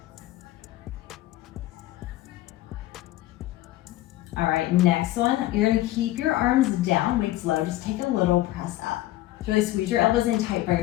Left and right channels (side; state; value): right; quieter; 16.0 dB